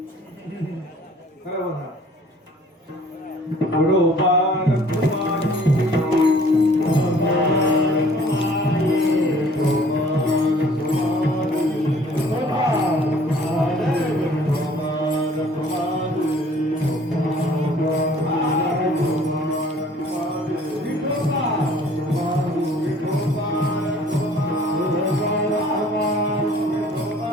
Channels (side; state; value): both; normal; correlation 0.54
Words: करा वर हात. विठोबा